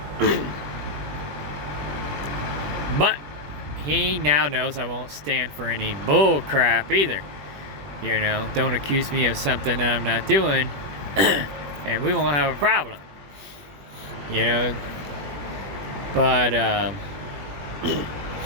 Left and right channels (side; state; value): left; late; 21 ms